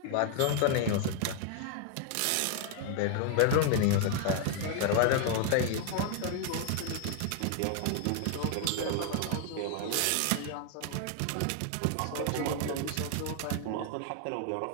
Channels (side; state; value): both; different; correlation 0.00